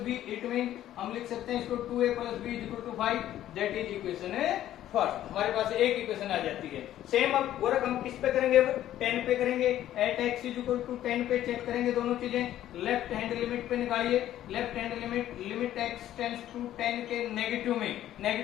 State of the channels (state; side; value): quieter; right; 12.5 dB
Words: b, it mean हम लिख सकते हैं इसको 2a plus b is equal to 5, that is equation first, हमारे पास एक इक्वेशन आ जाती है। सेम अब वर्क हम किस पे करेंगे, अब 10 पे करेंगे। एट x इक्वल टू 10 पे चेक करेंगे दोनों चीजें। लेफ्ट हैंड लिमिट पे निकालिए, left hand limit x tends to 10 के नेगेटिव में